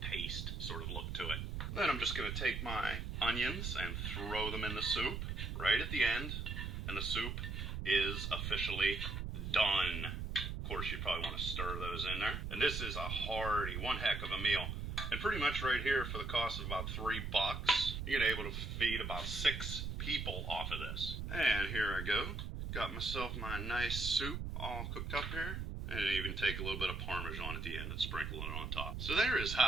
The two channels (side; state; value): right; noise; rumble, 4 dB below the sound